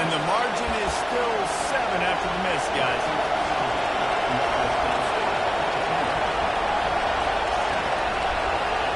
And the margin is still 7 after the miss, guys.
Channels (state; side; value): identical; both; correlation 1.00